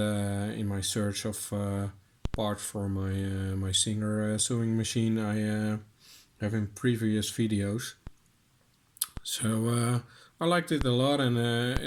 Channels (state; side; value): identical; both; correlation 1.00